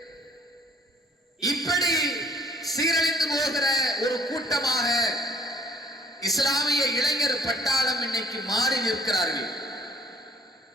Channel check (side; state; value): both; normal; correlation 0.56